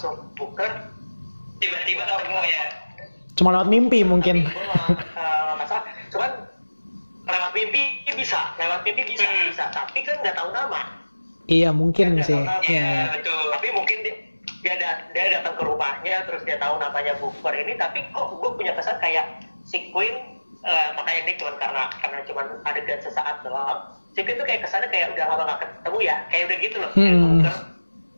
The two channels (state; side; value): inverted; both; correlation -1.00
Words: Booker. Tiba-tiba ketemu ya. Cuma lewat mimpi mungkin. Masalah. Cuman lewat mimpi bisa. Tapi kan nggak tahu nama. Iya mungkin sih. Iya betul. Tapi mungkin dia datang ke rumahnya terus dia tahu namanya Booker ini, tapi kok gue punya kesan kayak si Queen makanya ini cuma karena cuma adegan sesaat doang. Si Queen tuh kayak kesannya kayak udah lama gak ketemu ya, kayak udah gitu loh. Booker.